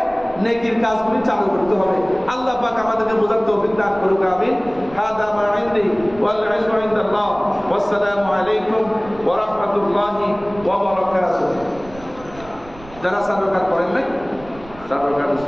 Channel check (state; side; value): noise; right; rumble, 20 dB below the sound